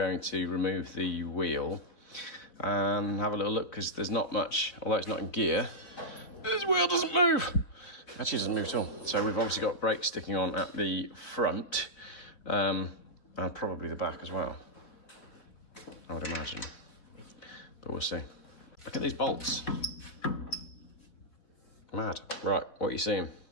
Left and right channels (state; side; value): late; right; 4.4 ms